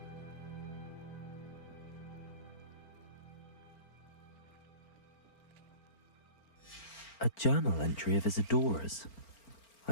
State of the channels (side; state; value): right; late; 4.4 ms